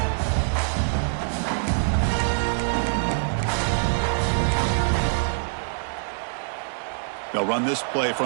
They'll run this play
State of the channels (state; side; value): silent; left; digital silence